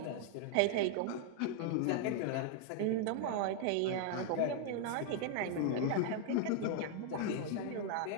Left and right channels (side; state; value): both; different; correlation 0.00